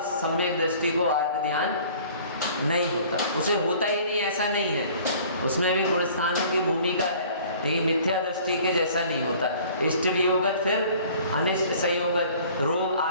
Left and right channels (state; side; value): inverted; both; correlation -0.51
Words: सम्यक दृष्टि को आर्त ध्यान नहीं होता। उसे होता ही नहीं, ऐसा नहीं है। उसमें भी गुण स्थानों की भूमिका है, लेकिन मिथ्या दृष्टि के जैसा नहीं होता। इष्ट वियोगत, फिर अनिष्ट संयोगत। रोग